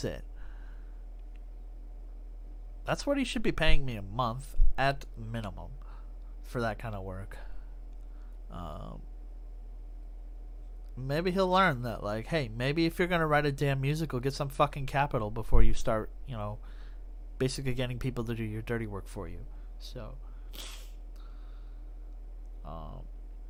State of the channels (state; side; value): identical; both; correlation 1.00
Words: it. That's what he should be paying me a month at minimum for that kind of work. Maybe he'll learn that, like, hey, maybe if you're gonna write a damn musical, get some fucking capital before you start, you know, basically getting people to do your dirty work for you. So.